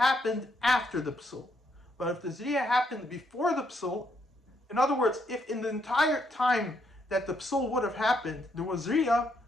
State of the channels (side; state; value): both; normal; correlation 0.75